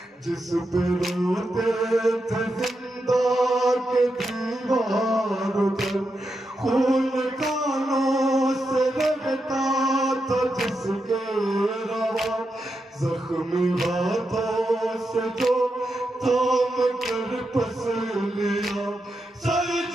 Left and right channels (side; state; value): both; normal; correlation 0.86